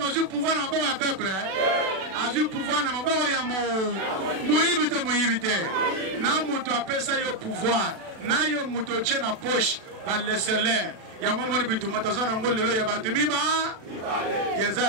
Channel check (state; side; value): late; left; 36 ms